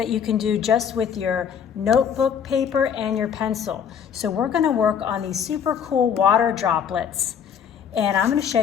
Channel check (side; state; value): right; quieter; 7.9 dB